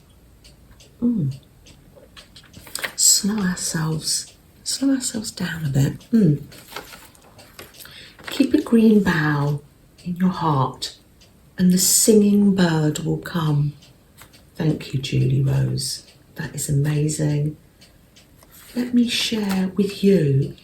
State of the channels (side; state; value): both; identical; correlation 1.00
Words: Slow ourselves down a bit. Keep a green bough in your heart, and the singing bird will come. Thank you, Julierose. That is amazing. Let me share with you,